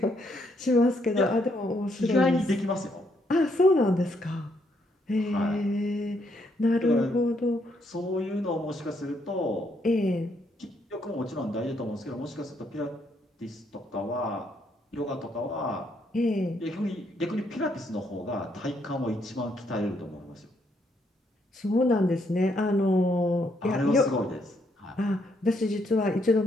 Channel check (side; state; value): both; normal; correlation 0.73